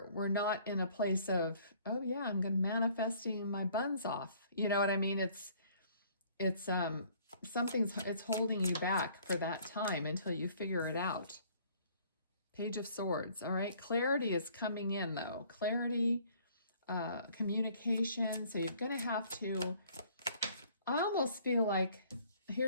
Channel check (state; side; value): inverted; both; correlation -0.57